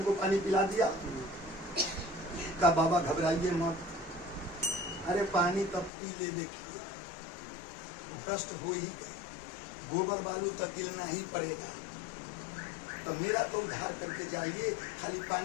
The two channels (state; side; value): drops out; right; at 5.9 s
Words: पानी पिला दिया। का बाबा घबराइए मत, अरे पानी तब पी ले, देखिए भ्रष्ट हो ही गए, गोबर बालू तो गिरना ही पड़ेगा। तो मेरा तो उद्धार करके जाइए, खाली